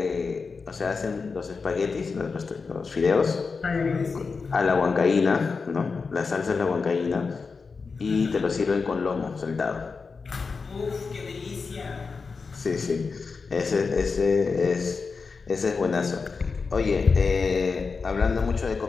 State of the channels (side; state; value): right; quieter; 4.8 dB